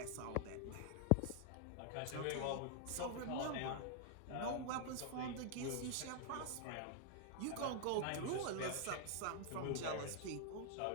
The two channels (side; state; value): both; different; correlation 0.00